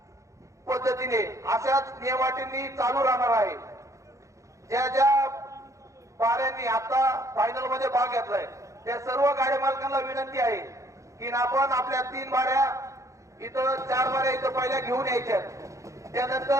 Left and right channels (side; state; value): left; late; 0.15 ms